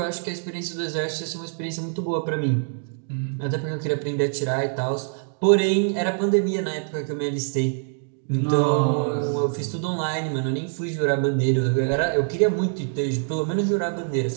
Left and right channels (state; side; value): silent; left; 62 dB below the other